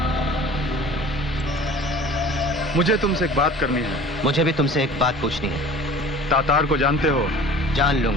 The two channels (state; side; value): normal; both; correlation 0.44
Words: मुझे तुमसे एक बात करनी है। मुझे भी तुमसे एक बात पूछनी है। तातार को जानते हो? जान